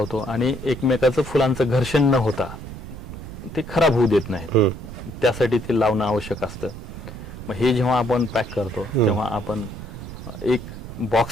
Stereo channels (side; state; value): right; noise; rumble, 11 dB below the sound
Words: आणि एकमेकाचं फुलांचं घर्षण न होता ते खराब होऊ देत नाही, त्यासाठी ते लावणं आवश्यक असतं. मग हे जेव्हा आपण पॅक करतो तेव्हा आपण एक